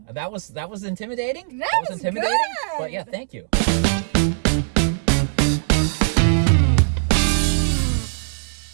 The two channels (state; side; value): silent; left; digital silence